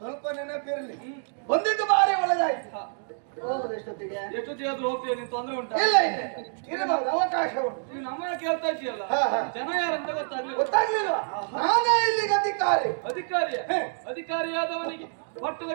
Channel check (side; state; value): left; silent; digital silence